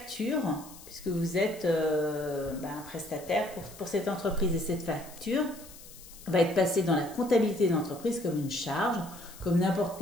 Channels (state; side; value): noise; left; hiss, 18 dB below the sound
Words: puisque vous êtes un prestataire pour cette entreprise. Et cette facture va être passée dans la comptabilité de l'entreprise comme une charge, comme n'importe